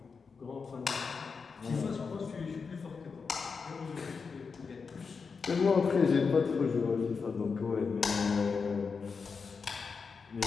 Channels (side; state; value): right; quieter; 5.2 dB